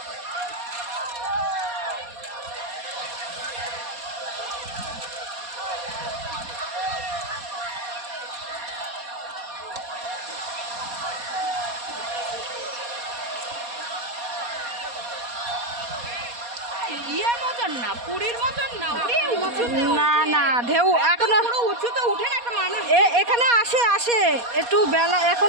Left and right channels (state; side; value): late; left; 4.2 ms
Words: ইয়ের মতন না, পুরীর মতন না, না না, ঢেউ এখনো উঁচুতে উঠে না একটা মানুষ এখানে আসে আসে একটু বেলা,